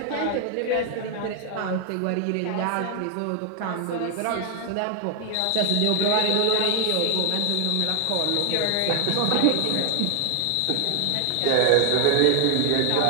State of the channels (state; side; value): different; both; correlation 0.00